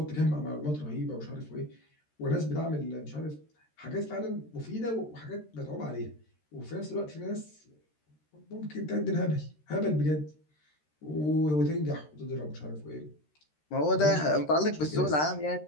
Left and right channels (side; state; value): right; late; 13 ms